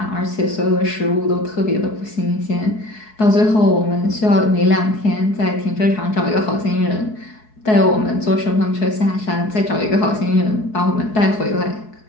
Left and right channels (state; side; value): late; right; 4.7 ms